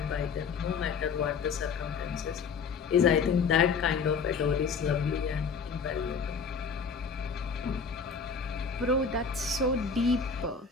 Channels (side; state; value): right; quieter; 5.6 dB